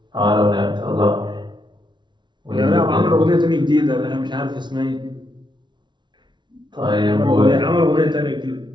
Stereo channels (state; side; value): late; left; 0.22 ms